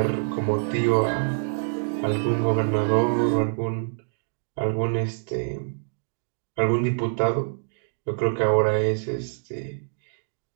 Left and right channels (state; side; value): silent; left; digital silence